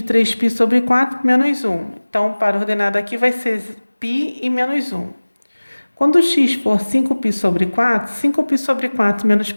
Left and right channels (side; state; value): both; inverted; correlation -1.00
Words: 3π sobre 4, menos 1. Então, para ordenado aqui vai ser π e menos 1. Quando x for 5π sobre 4, 5π sobre 4 menos